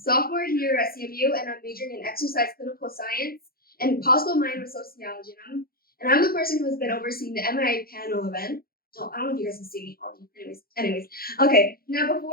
here at CMU, and I'm majoring in exercise clinical science and possible minor sociology. And I'm the person who has been overseeing the MIA panel event. Oh, I don't know if you guys can see me. Anyways. Okay. Now,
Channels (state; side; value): late; right; 0.44 ms